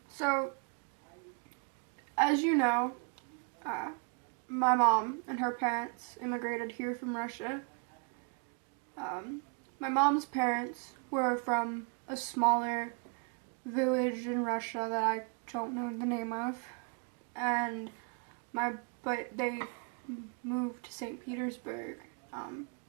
so, as you know, my mom and her parents immigrated here from Russia. My mom's parents were from a smaller village in Russia that I don't know the name of, and but they moved to St. Petersburg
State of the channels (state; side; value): quieter; left; 36.4 dB